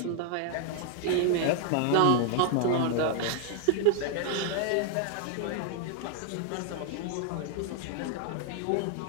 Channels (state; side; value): different; both; correlation 0.00